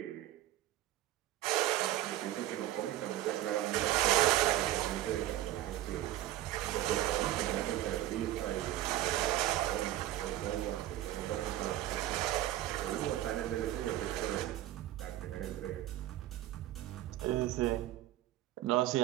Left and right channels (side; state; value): left; quieter; 14.0 dB